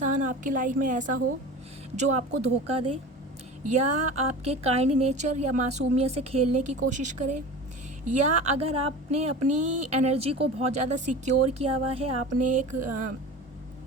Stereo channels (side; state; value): both; normal; correlation 0.34